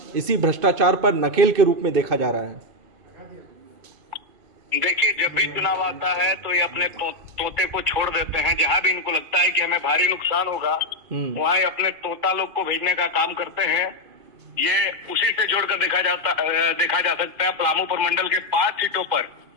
इसी भ्रष्टाचार पर नकेल के रूप में देखा जा रहा है। देखिए, जब भी चुनाव आता है तो ये अपने तोते को छोड़ देते हैं। जहां भी इनको लगता है कि हमें भारी नुकसान होगा, वहां ये अपने तोता लोग को भेजने का काम करते हैं। ये उसी से जोड़कर देखा जा सकता है। पलामू प्रमंडल के 5 सीटों पर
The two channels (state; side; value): late; left; 2.5 ms